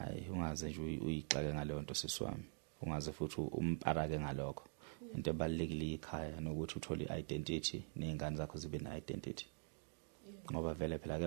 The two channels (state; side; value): silent; left; digital silence